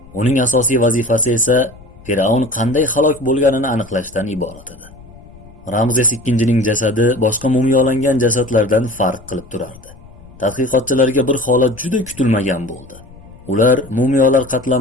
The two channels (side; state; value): left; noise; rumble, 21 dB below the sound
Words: Uning asosiy vazifasi esa Fir'avn qanday halok bo'lganini aniqlashdan iborat edi. Ramzes II-ning jasadi boshqa mumiyolangan jasadlardan farq qilib turardi. Tadqiqotchilarga bir holat juda kutilmagan bo'ldi. Ular mumiyolar